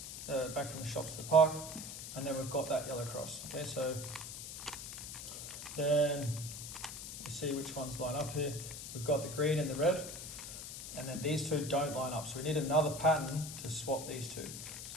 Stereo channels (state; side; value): noise; left; hiss, 8 dB below the sound